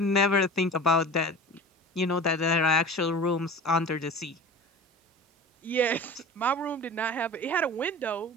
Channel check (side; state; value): both; normal; correlation 0.37